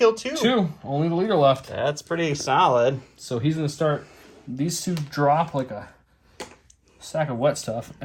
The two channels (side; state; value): both; identical; correlation 1.00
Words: 2. 2. Only the leader left. That's pretty solid. So he's going to start... These 2 drop like a sack of wet stuff.